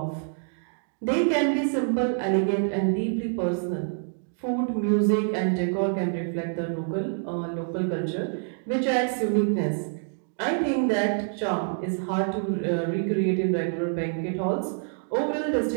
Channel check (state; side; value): silent; left; digital silence